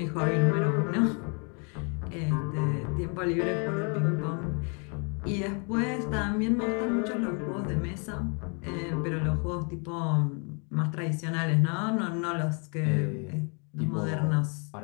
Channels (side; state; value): right; quieter; 36.5 dB